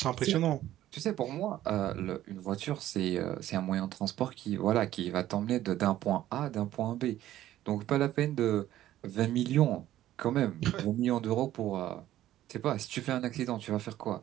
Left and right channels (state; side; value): quieter; left; 13.4 dB